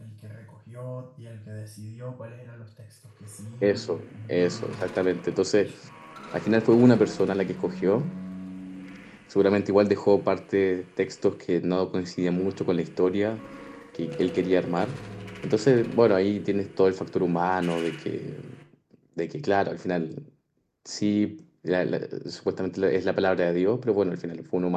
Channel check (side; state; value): both; identical; correlation 1.00